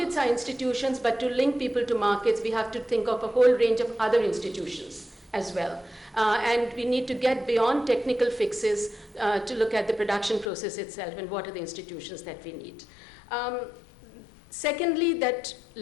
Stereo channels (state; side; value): drops out; right; at 10.5 s